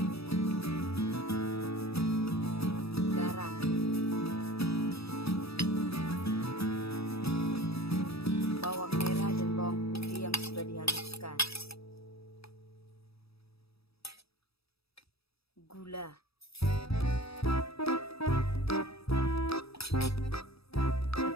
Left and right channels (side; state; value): right; late; 0.77 ms